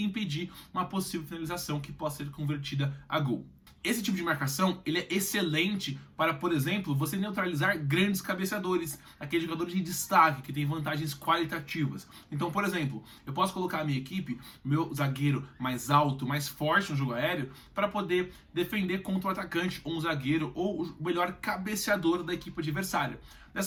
uma possível finalização que possa ser convertida a gol. Esse tipo de marcação ele é excelente para, por exemplo, você neutralizar grandes cabeceadores, aqueles jogadores de destaque que têm vantagens qualitativas. Então, por exemplo, eu posso colocar a minha equipe, meu zagueiro mais alto, mais forte no jogo aéreo, para poder defender contra o atacante, ou um zagueiro, ou o melhor cabeceador da equipe adversária.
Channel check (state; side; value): identical; both; correlation 1.00